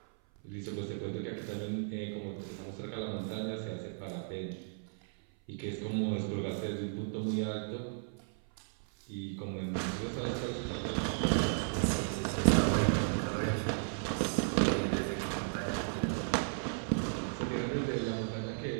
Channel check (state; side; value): silent; left; 55 dB below the other